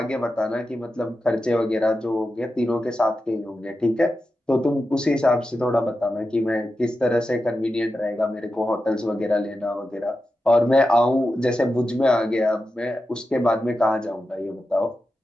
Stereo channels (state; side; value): normal; both; correlation 0.91